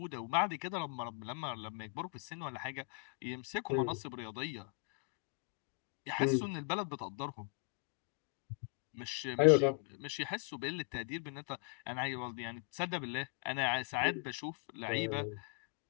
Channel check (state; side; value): quieter; right; 37.5 dB